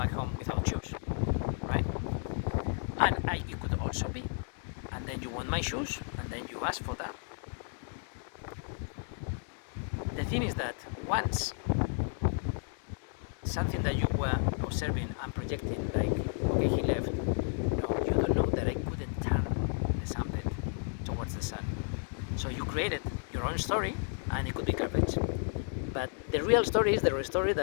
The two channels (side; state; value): right; silent; 56 dB below the other